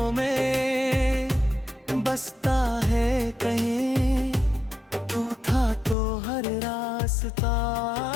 में बसता है कहीं। तू था तो हर रास्ता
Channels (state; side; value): drops out; right; at 6.0 s